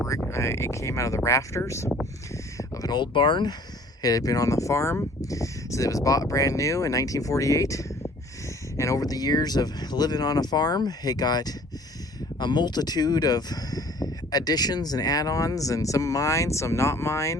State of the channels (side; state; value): both; normal; correlation 0.52